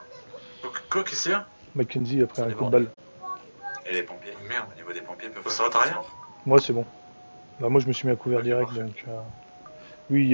Quoi, qu'est-ce qu'il y a? Mackenzie a pris un Ils sont coup de balle. Et les pompiers? Merde. Au niveau des pompiers, peuvent Ça va, t'as rien? Moi, c'est bon. Bah, moi, je me suis mis à couvert direct, donc... Lui,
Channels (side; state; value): both; inverted; correlation -1.00